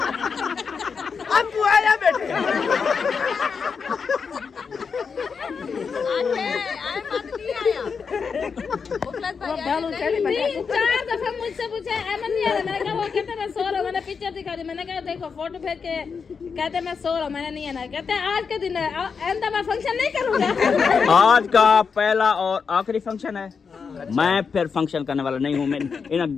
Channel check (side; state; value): right; quieter; 5.7 dB